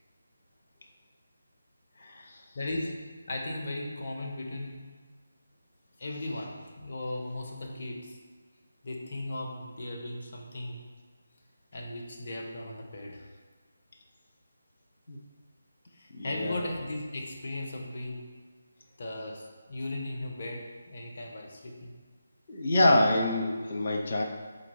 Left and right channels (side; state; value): both; inverted; correlation -0.88